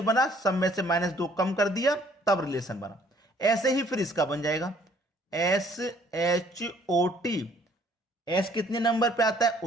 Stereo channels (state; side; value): normal; both; correlation 0.60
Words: बना? सब में से -2 कम कर दिया तब रिलेशन बना। ऐसे ही फिर इसका बन जाएगा SHOT। S कितने नंबर पे आता है?